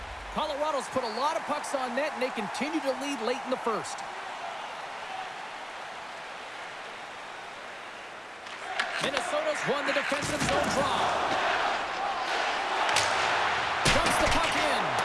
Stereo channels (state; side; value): identical; both; correlation 1.00